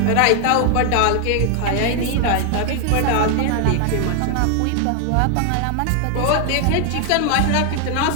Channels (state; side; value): different; both; correlation 0.00